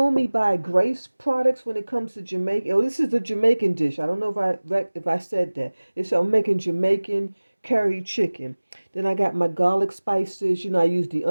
buy Grace products when it comes to Jamaica. Oh, this is a Jamaican dish. I don't know if I said that. I'm making Jamaican curry chicken. Then I got my garlic spices. I use the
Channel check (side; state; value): both; inverted; correlation -1.00